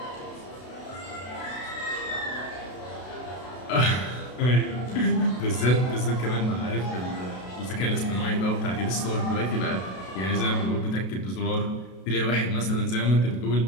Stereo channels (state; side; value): late; right; 32 ms